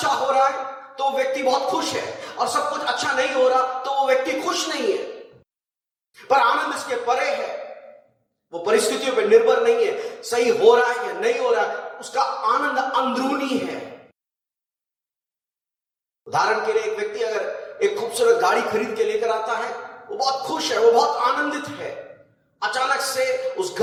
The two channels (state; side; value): identical; both; correlation 1.00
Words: हो रहा है तो व्यक्ति बहुत खुश है, और सब कुछ अच्छा नहीं हो रहा तो वो व्यक्ति खुश नहीं है। पर आनंद इसके परे है, वो परिस्थितियों पर निर्भर नहीं है, सही हो रहा है या नहीं हो रहा है, उसका आनंद अंदरूनी है। उदाहरण के लिए एक व्यक्ति अगर एक खूबसूरत गाड़ी खरीद के लेकर आता है, वो बहुत खुश है, वो बहुत आनंदित है। अचानक से उस